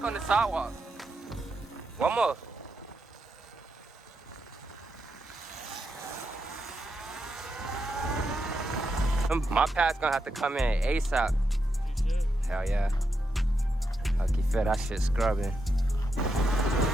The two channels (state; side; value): normal; both; correlation 0.84